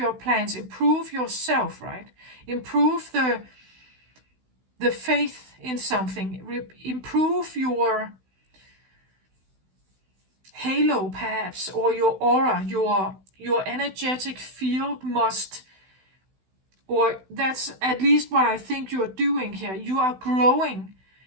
plans, improve yourself, right? Improve the faith in something, improve your halo perhaps, or your aura, your energetic field must, or that's at least what I think you're doing here. You are growing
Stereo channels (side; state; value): left; late; 16 ms